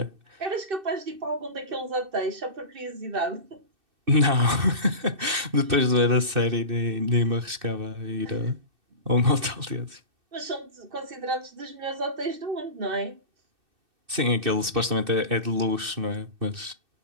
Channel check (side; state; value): left; late; 2.6 ms